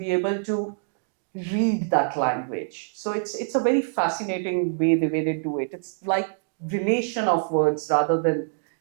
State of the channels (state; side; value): silent; left; digital silence